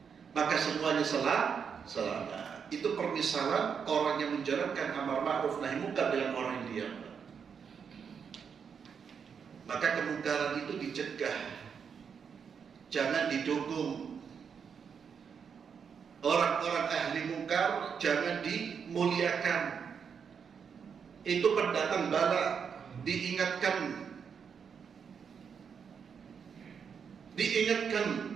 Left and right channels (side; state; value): left; quieter; 6.7 dB